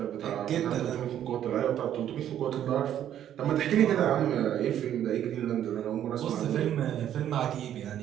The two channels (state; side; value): quieter; left; 10.7 dB